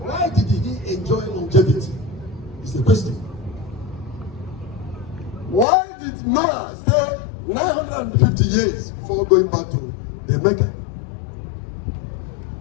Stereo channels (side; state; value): right; drops out; at 5.7 s